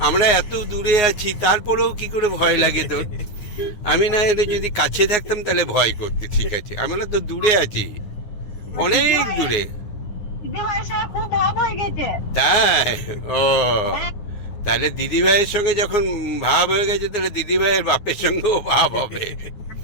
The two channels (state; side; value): late; right; 9.6 ms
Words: আমরা এত দূরে আছি তারপরেও কি করে ভয় লাগে তোর? আমি না এলে যদি কাছে থাকতাম তাহলে ভয় করতে, ঠিক আছে, আমরা তো দূরে আছি, অনেক দূরে। খুব ভাব হয়ে গেছে। তাই? ও, তাহলে দিদি ভাইয়ের সঙ্গে যখন ভাব হয়ে গেছে তাহলে দিদি ভাইয়ের বাপের সঙ্গেও ভাব হবে।